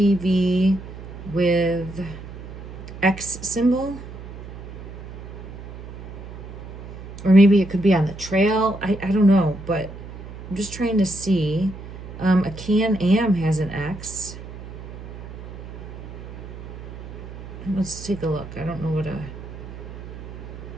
with X symbol. Or maybe it could be on the trail. I don't know, but I'm just trying to see. A Can-Am has an X. Let's take a look. I don't know what a...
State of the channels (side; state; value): right; noise; hum, 12 dB below the sound